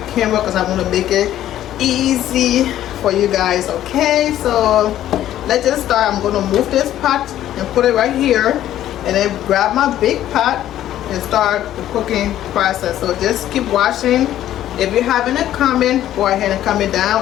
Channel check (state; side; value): quieter; right; 12.4 dB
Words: camera because I want to make it easy for you guys. Okay, so let's just start. I'm going to move this pot and put it right here, and then grab my big pot and start the cooking process. So just keep watching. If you have any comment, go ahead and comment